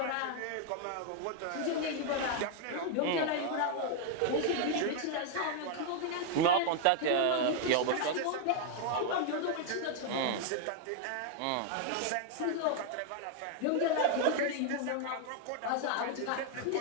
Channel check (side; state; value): both; different; correlation 0.00